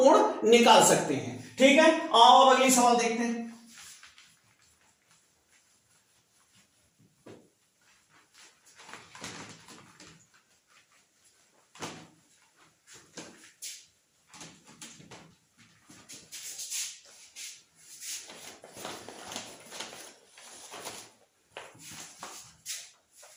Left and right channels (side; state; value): both; identical; correlation 1.00